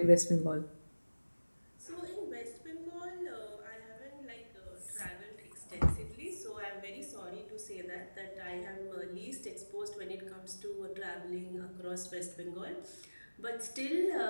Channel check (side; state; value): both; inverted; correlation -1.00